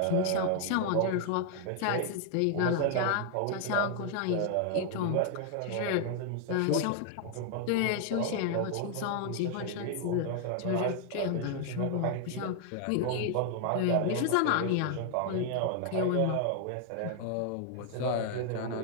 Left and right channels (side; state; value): both; different; correlation 0.00